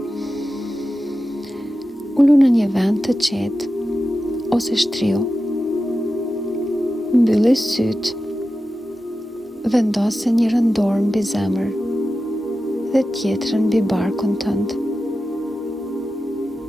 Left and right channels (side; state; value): both; normal; correlation 0.92